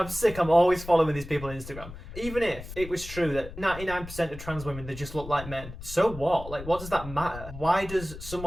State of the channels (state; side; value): noise; left; rumble, 12 dB below the sound